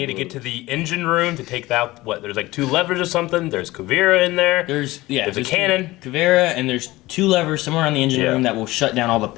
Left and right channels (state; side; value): quieter; right; 19.0 dB